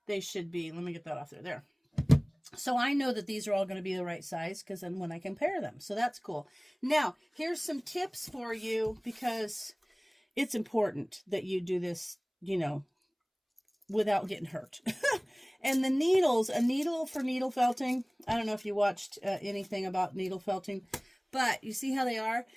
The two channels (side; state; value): both; identical; correlation 1.00